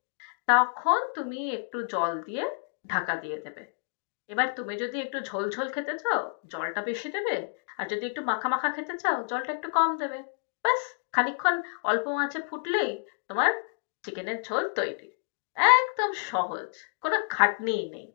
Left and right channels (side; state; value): right; silent; digital silence